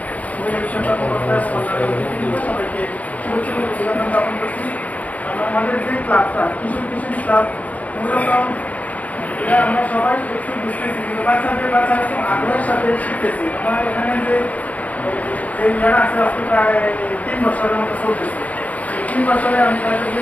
বিভিন্ন বিষয় কর্মকর্তা সবাইকে শুভেচ্ছা ও অভিনন্দন জ্ঞাপন করছি। আমাদের যে ক্লাবটা কিশোর কিশোরী ক্লাব মূলত আমরা সবাই একটু বুঝতেছি কিন্তু বাচ্চারা খুব আগ্রহের সাথে শিখতেছি। আমার এখানে যে ইয়ারা আছে আজকে প্রায় 3 বছরের মতো চলতেছে। 3 বছরে আমি তাদের যে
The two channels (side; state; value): right; late; 0.071 ms